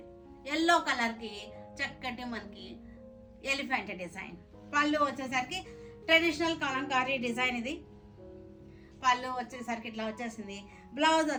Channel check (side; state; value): both; identical; correlation 1.00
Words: ఎల్లో కలర్కి చక్కటి మనకి ఎలిఫెంట్ డిజైన్. పళ్ళు వచ్చేసరికి ట్రెడిషనల్ కలంకారీ డిజైన్. ఇది పళ్ళు వచ్చేసరికి ఇట్లా వచ్చేసింది. బ్లౌజ్